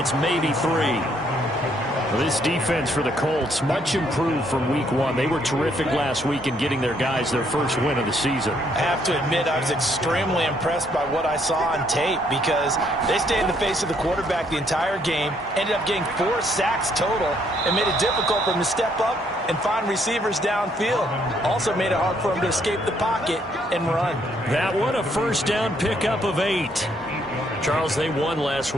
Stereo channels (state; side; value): normal; both; correlation 0.69